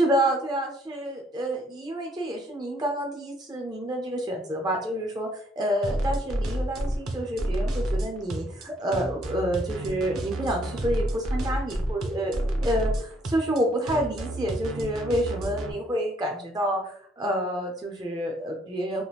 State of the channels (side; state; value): both; normal; correlation 0.67